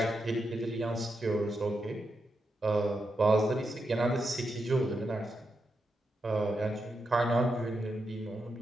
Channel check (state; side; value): normal; both; correlation 0.85